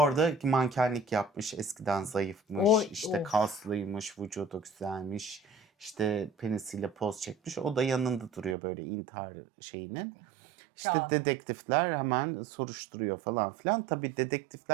mankenlik yapmış, eskiden zayıfmış, işte kaslıymış, vücudu güzelmiş, işte penisiyle poz çekmiş. O da yanında duruyor böyle intihar şeyinin. İşte Kağıdı. dedektifler hemen soruşturuyor falan filan. Tabii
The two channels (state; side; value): drops out; left; at 8.6 s